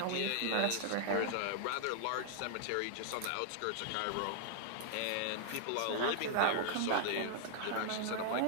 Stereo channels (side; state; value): both; different; correlation 0.00